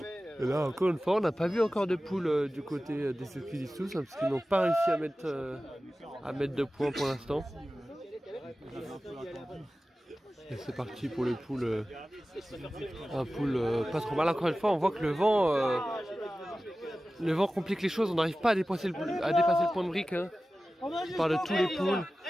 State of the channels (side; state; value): both; normal; correlation 0.95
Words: Et là encore une fois on n'a pas vu encore de poule du côté des skidistos hein, parce qu'ils n'ont pas réussi à mettre de points pour l'instant. Et c'est parti pour le pool, un pool pas trop mal. Encore une fois on voit que le vent complique les choses, on n'arrive pas à dépasser le point de brique hein. On parle de tous les pools.